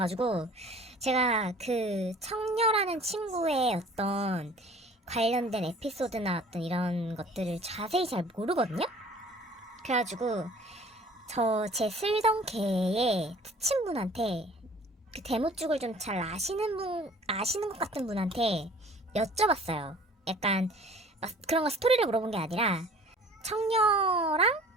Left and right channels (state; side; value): normal; both; correlation 0.49